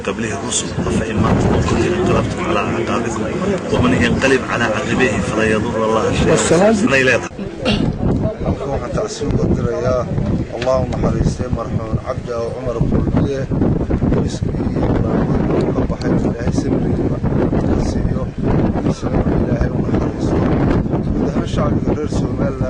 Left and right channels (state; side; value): identical; both; correlation 1.00